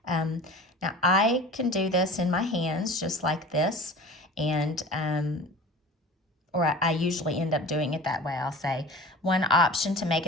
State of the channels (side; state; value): both; normal; correlation 0.39